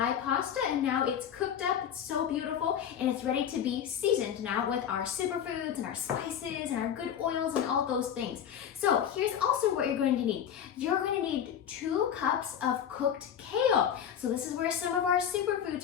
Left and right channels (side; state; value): right; quieter; 9.0 dB